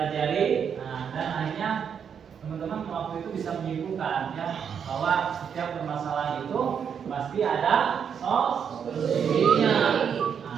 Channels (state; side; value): quieter; left; 7.5 dB